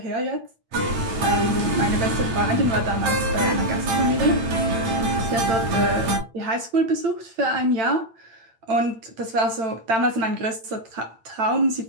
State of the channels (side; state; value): left; late; 8.8 ms